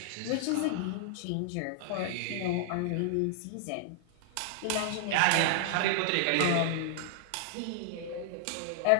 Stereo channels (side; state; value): both; different; correlation -0.01